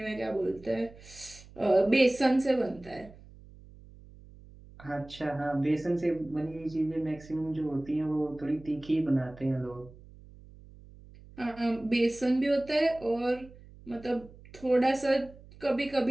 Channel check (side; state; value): right; noise; hum, 21 dB below the sound